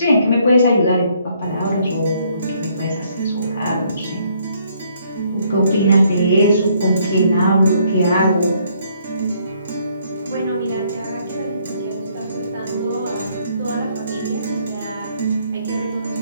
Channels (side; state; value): both; inverted; correlation -0.68